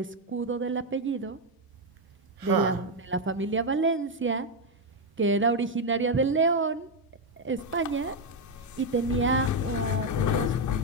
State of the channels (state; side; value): normal; both; correlation 0.04